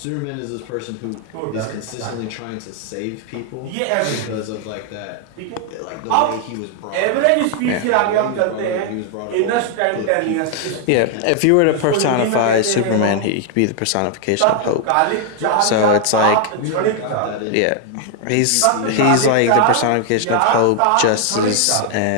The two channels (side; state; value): both; different; correlation 0.00